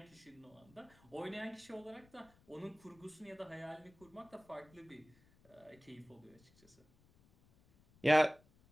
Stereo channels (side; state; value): left; noise; rumble, 28 dB below the sound